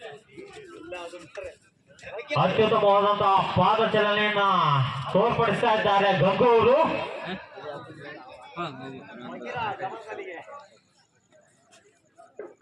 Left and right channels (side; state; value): both; identical; correlation 1.00